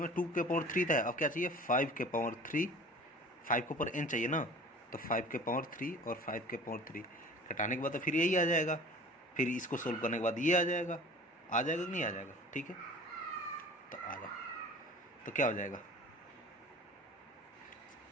मैं 2 के पावर 3 था, अब क्या चाहिए 5 के पावर 3, 5 के ऊपर n चाहिए ना, तो 5 के पावर 3 और 5 के पावर 3 घटाने के बाद तो फिर यही आ जाएगा, फिर इसको सोल्व करने के बाद ये आ जाएगा कि नहीं आ जाएगा, ठीक है। तो आ जाओ, तो क्या हो जाएगा,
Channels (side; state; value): both; normal; correlation 0.43